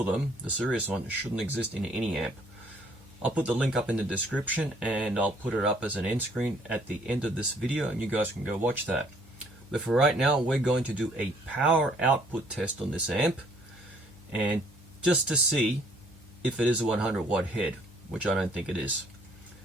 of them, the serious one, shouldn't exist in any amp. I'll put the link up in the description, and I'll put it up as an end screen at the end of this video, and you guys can go watch that. But for right now, we're going to do a power output test on this amp, and just to see if it is a 100 watt head, which I don't think it is.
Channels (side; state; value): both; normal; correlation 0.62